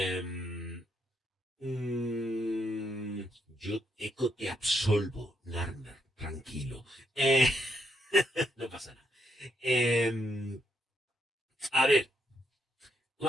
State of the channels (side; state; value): both; normal; correlation 0.76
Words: mm, yo eco te absolvo, Narmer, tranquilo. Eh, no pasa nada. Eh, a ver,